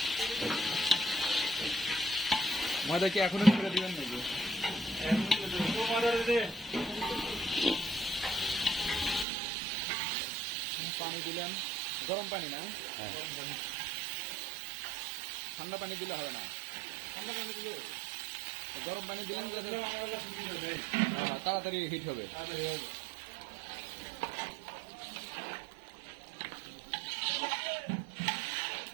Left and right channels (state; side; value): drops out; left; at 9.2 s